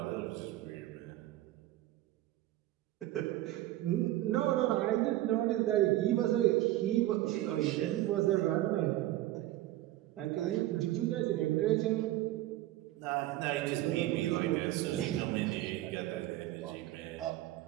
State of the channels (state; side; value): quieter; left; 15.3 dB